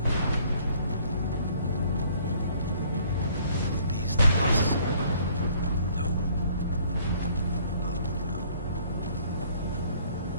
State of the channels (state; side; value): inverted; both; correlation -0.59